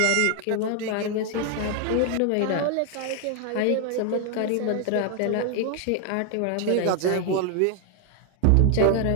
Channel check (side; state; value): both; different; correlation 0.00